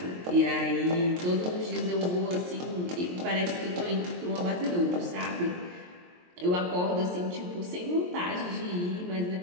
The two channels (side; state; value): left; late; 23 ms